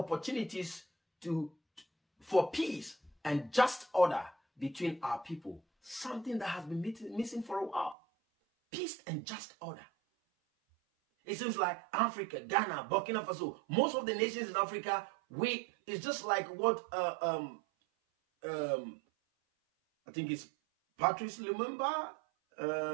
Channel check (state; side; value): drops out; left; at 8.0 s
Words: for peace and just order between our people. Something that has been missing for a while. Peace and just order. It seems like Africa, Ghana, Burkina Faso, most of the nations in Africa, it's just like what I think it's Patrice Lumumba.